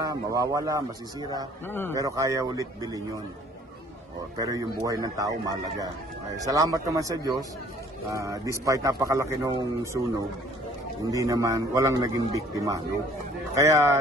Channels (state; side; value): normal; both; correlation 0.56